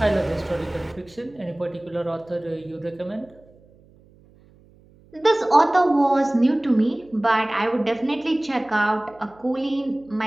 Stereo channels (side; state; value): right; noise; hum, 28 dB below the sound